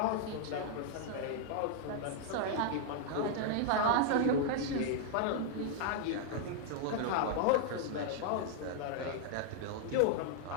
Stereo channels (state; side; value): different; both; correlation 0.00